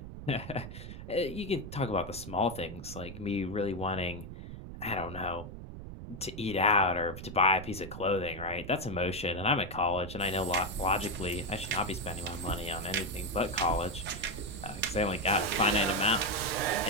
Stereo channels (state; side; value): noise; right; rumble, 11 dB below the sound